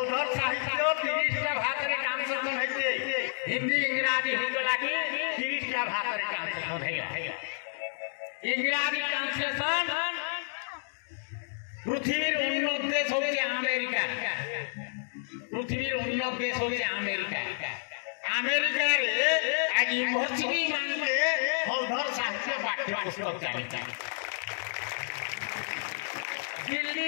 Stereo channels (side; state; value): right; silent; digital silence